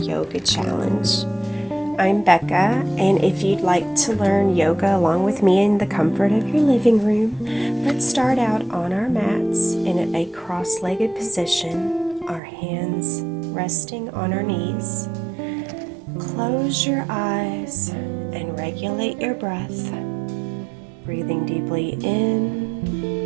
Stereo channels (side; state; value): left; drops out; at 12.4 s